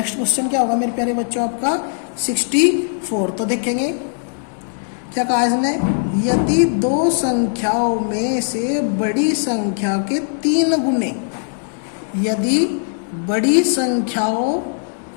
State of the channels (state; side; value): silent; right; digital silence